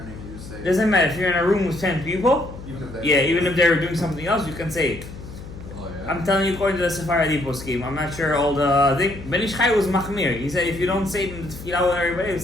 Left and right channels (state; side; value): noise; left; hum, 13 dB below the sound